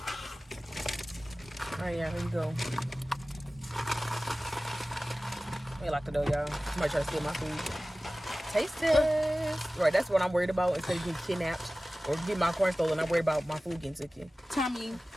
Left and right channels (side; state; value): both; normal; correlation 0.97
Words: Alright, yeah, here you go. Let me lock the door, y'all. Somebody try to steal my food. Taste test. Right, that's what I'm worried about. Instead of getting kidnapped or getting my corn stolen, I'm worried about my food getting taken. Tommy.